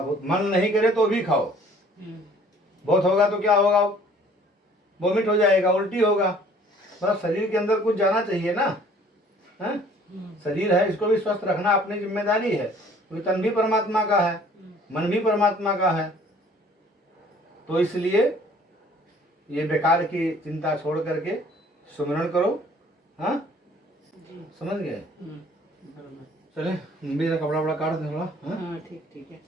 बहुत मन नहीं करे तो भी खाओ, बहुत होगा तो क्या होगा, वोमिट हो जाएगा, उल्टी होगा, मतलब शरीर के अंदर कुछ जाना चाहिए ना। है शरीर है, इसको भी स्वस्थ रखना अपनी जिम्मेदारी है, क्योंकि तन भी परमात्मा का है, मन भी परमात्मा का है। तो इसलिए ये बेकार की चिंता छोड़ करके सुमिरन करो। हाँ, जी। समझ गए? बराबर। चले, मेरा कपड़ा वपड़ा काट दे थोड़ा। हाँ, हाँ ठीक ठीक है,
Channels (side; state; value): both; normal; correlation 0.55